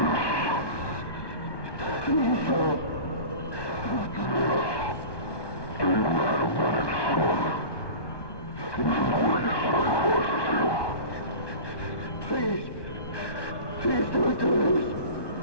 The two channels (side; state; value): right; late; 1.2 ms